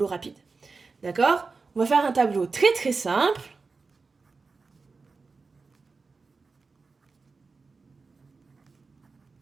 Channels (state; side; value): quieter; left; 4.3 dB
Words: rapide, d'accord? On va faire un tableau très très simple.